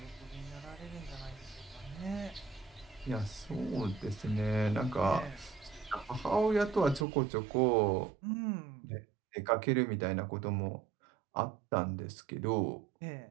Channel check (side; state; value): left; drops out; at 7.1 s